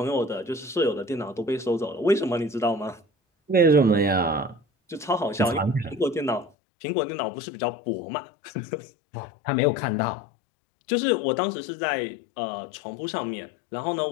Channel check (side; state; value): right; drops out; at 6.5 s